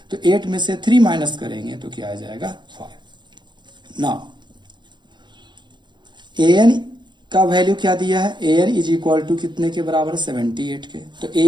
तो 8 में से 3 माइनस करेंगे तो क्या आ जाएगा 5। नाउ an का वैल्यू क्या दिया है, an इज इक्वल टू कितने के बराबर 78 के। तो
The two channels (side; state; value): left; late; 0.22 ms